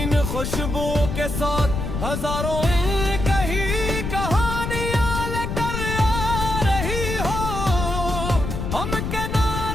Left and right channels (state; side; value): noise; left; rumble, 3 dB below the sound